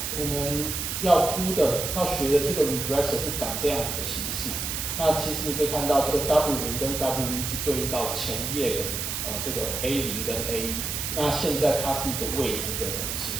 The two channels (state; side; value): noise; right; hiss, 3 dB below the sound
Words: 我们要学的这个 regressor 是长这样子的形式。那其实你可以看到这个 W0 跟 W1 是对应到前页的这个 A0 跟 A1。那现在它是一个未知的东西，